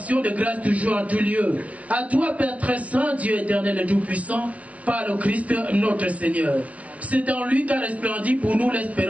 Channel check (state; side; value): late; left; 0.066 ms